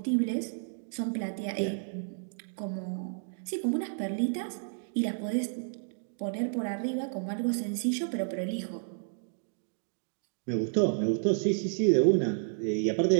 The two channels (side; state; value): left; silent; digital silence